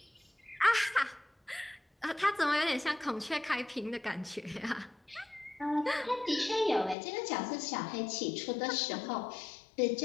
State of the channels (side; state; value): right; drops out; at 7.0 s